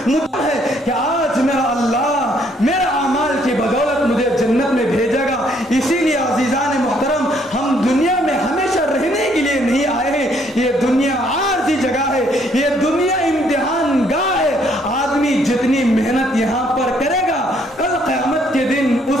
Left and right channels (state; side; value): normal; both; correlation 0.67